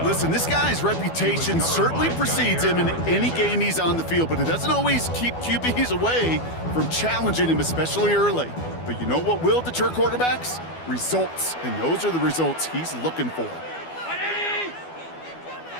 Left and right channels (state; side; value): late; right; 12 ms